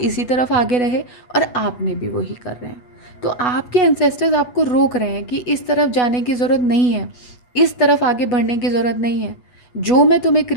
तरफ आगे रहे और आपने भी वही कर रहे हैं। तो आपके एंसेस्टर्स आपको रोक रहे हैं कि इस तरफ जाने की ज़रूरत नहीं है, इस तरफ आगे बढ़ने की ज़रूरत नहीं है। जो मैं तुम्हें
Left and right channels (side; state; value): right; late; 8.2 ms